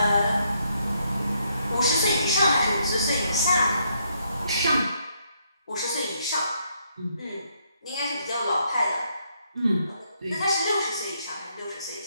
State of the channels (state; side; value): inverted; both; correlation -0.74